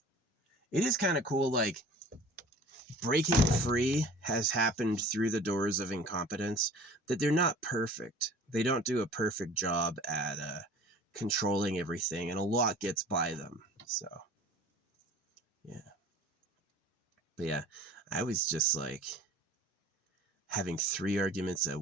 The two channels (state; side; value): normal; both; correlation 0.45